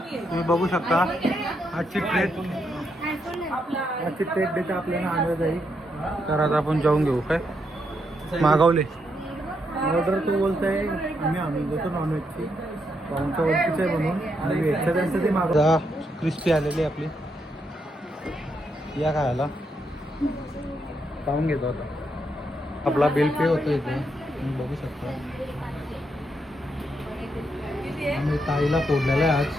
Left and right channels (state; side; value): normal; both; correlation 0.79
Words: बघू शकता आजची ट्रेट देते आपल्याला आणलं जाईल. तर आता आपण जाऊन घेऊ. काय मागवले ऑर्डर, तो बोलत आहे आम्ही आणून देतो नॉनव्हेजची. पाहुणच्या ओळखीचं आहे म्हणून. आणि व्हेजचं त्यांचं ते मागवता. क्रिस्पी आलेली आपली, या खायला पाहून घेतो. आता आपला बिल पे होतो इथे, तुम्ही बघू शकता. आम्ही ताईला फोडलेलं आहे आज.